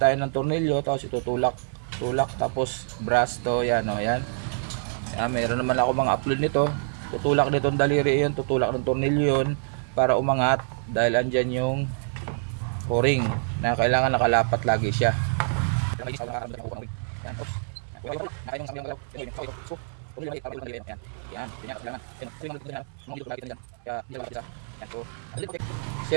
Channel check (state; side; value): silent; left; 61 dB below the other